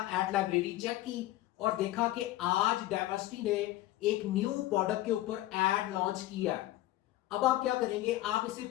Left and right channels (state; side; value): quieter; right; 15.8 dB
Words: एड लाइब्रेरी चेक की और देखा कि आज diversity ने एक न्यू प्रोडक्ट के ऊपर एड लॉन्च किया। अब आप क्या करेंगे, आप इसे